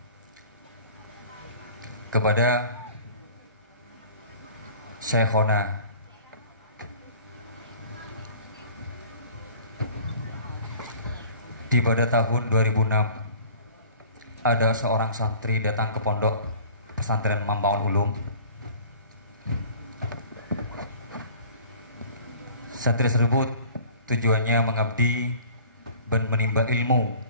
kepada Syekhona. Di pada tahun 2006 ada seorang santri datang ke pondok pesantren Mambaul Ulum. Santri tersebut tujuannya mengabdi dan menimba ilmu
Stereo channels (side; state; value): both; inverted; correlation -0.47